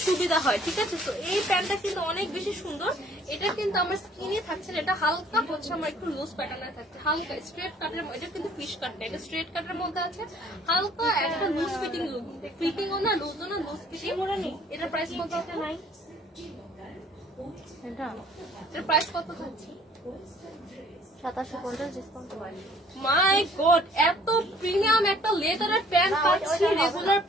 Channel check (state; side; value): normal; both; correlation 0.57